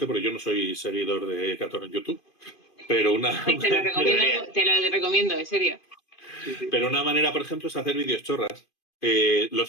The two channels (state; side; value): late; right; 2.5 ms